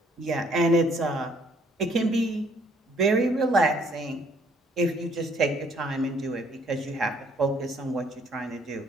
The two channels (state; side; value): normal; both; correlation 0.64